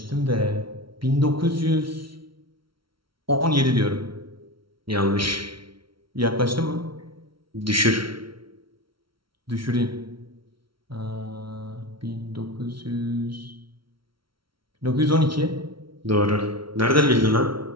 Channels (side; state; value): left; late; 0.74 ms